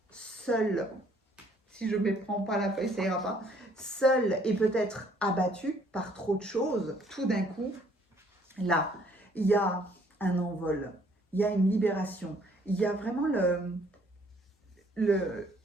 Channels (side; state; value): both; normal; correlation 0.62